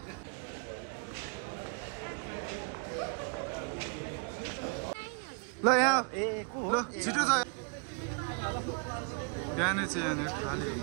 ल यहाँ ल छिटो छ बिहानै चाहिँ यहाँनिर खाली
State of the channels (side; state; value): left; quieter; 34.1 dB